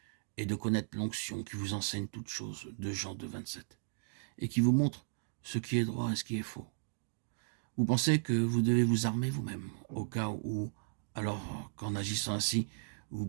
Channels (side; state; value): left; silent; digital silence